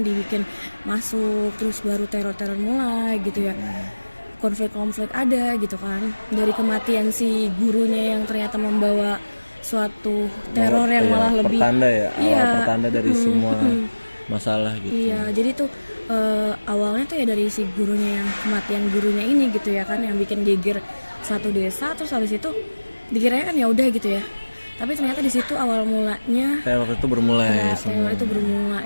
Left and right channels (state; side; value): inverted; both; correlation -1.00